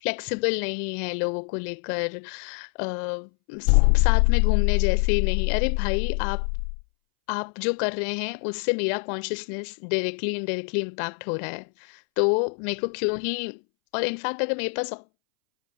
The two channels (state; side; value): silent; right; 62 dB below the other